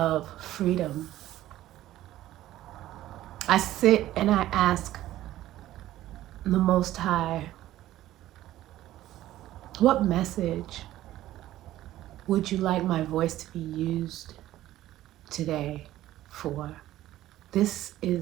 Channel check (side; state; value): left; quieter; 14.4 dB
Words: freedom. I sit and I ask the Most High, what message would you like my voice to be used today for? This